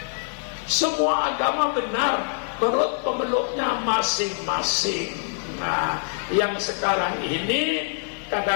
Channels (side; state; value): right; silent; digital silence